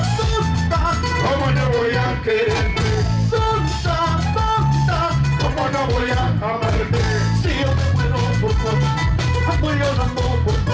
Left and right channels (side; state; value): both; identical; correlation 1.00